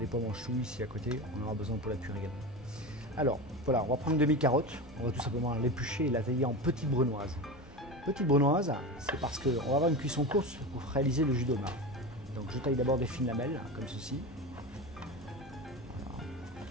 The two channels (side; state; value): both; normal; correlation 0.25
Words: pois mange-tout ici à côté, on aura besoin pour la cuire également. Alors, voilà, on va prendre une demi-carotte, on va tout simplement l'éplucher et la tailler en petites brunoises. Petite brunoise, c'est parce qu'on va avoir une cuisson courte pour réaliser le jus d'homard. Donc je taille d'abord des fines lamelles, comme ceci. Voilà.